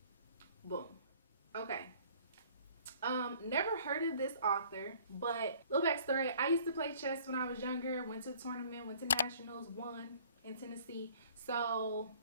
Boom. Okay. Never heard of this author, but little backstory. I used to play chess when I was younger. Went to a tournament, went to nationals, won in Tennessee. So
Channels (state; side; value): inverted; both; correlation -0.54